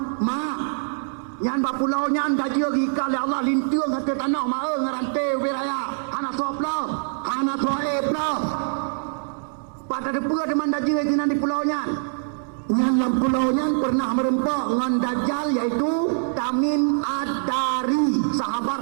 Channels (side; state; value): left; silent; 61 dB below the other